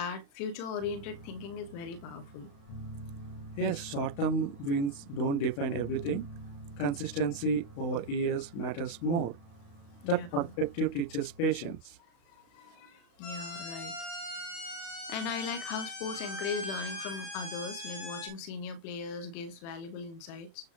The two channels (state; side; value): late; right; 35 ms